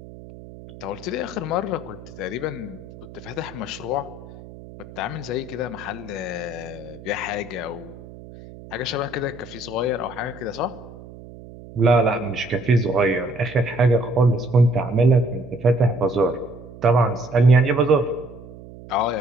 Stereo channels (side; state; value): right; noise; hum, 17 dB below the sound